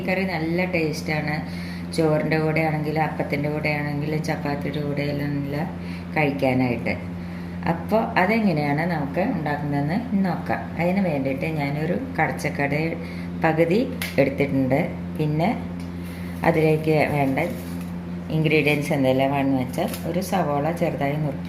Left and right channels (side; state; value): both; identical; correlation 1.00